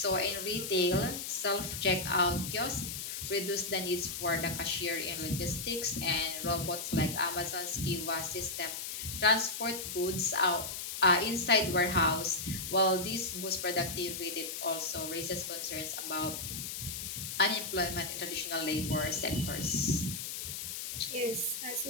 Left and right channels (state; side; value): noise; left; hiss, 5 dB below the sound